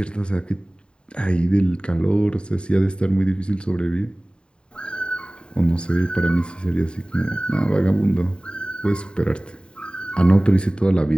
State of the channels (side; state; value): right; late; 0.051 ms